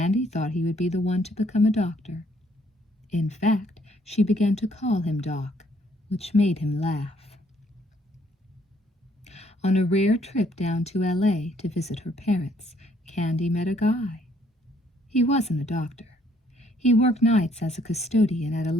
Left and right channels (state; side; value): normal; both; correlation 0.66